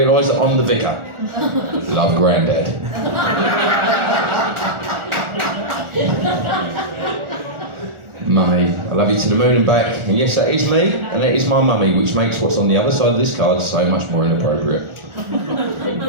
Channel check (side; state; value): left; late; 1.4 ms